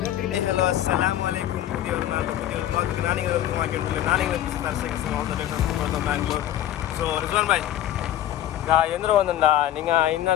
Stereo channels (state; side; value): quieter; right; 12.2 dB